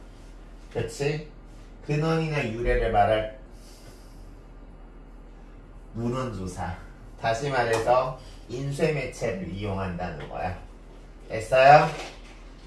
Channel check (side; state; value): both; identical; correlation 1.00